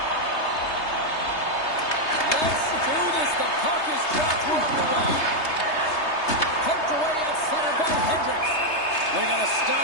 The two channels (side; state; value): right; late; 3.3 ms